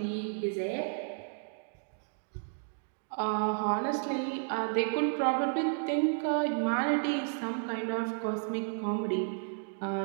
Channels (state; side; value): silent; left; digital silence